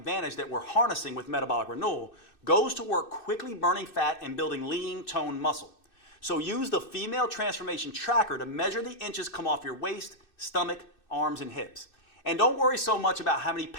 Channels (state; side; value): late; right; 2.6 ms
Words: that we're harnessing with metabolic renewal, goes to work quickly burning fat and building lean, toned muscle. So use the female transformation tracker to measure the inches come off your waist, stomach, arms, and hips. And don't worry so much about how many